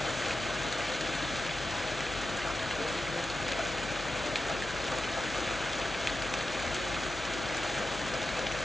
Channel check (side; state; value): left; noise; hum, 12 dB below the sound